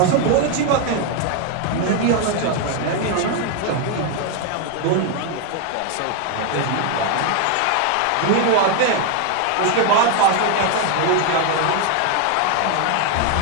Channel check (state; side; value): different; both; correlation 0.01